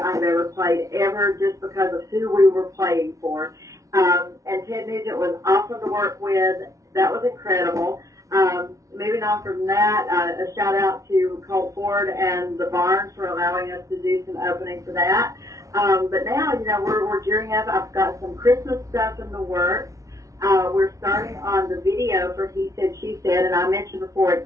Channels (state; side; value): late; left; 0.16 ms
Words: ever played ever, just because of who we were playing for. And Ted Nugent was awesome to work with. That was incredible. Moving on from that, a shout out to Colt Ford and the Barnes for allowing us to do some opening for that. But now, you know, we're gearing up. I've got some Christmas stuff in the works. We're starting on the video for He Said, She Said, and I mentioned before,